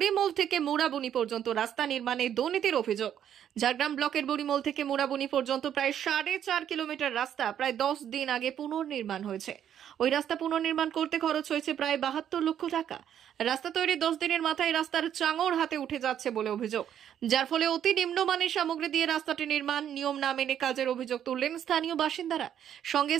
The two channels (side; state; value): left; quieter; 9.8 dB